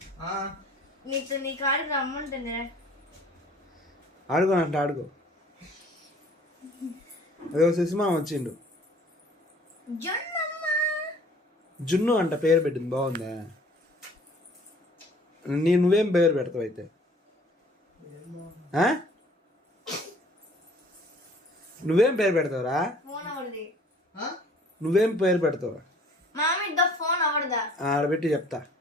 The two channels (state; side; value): normal; both; correlation 0.53